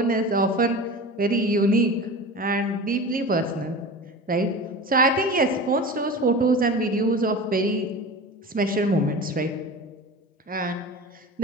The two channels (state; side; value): normal; both; correlation 0.32